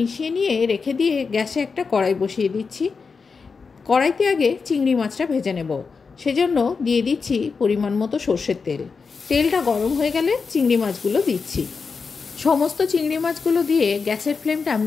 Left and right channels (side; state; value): right; quieter; 5.0 dB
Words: নিয়ে রেখে দিয়ে গ্যাসে একটা কড়াই বসিয়ে দিচ্ছি। কড়াইতে আগে চিংড়ি মাছটা ভেজে নেব, সেজন্য দিয়ে দিচ্ছি পরিমাণ মতো সর্ষের তেল। তেলটা গরম হয়ে গেলে চিংড়ি মাছগুলো দিচ্ছি। সমস্ত চিংড়ি মাছগুলো দিয়ে গ্যাসের ফ্লেমটা